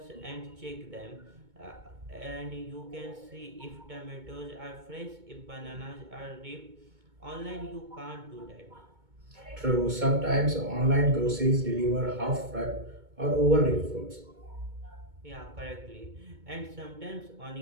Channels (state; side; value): late; left; 2.2 ms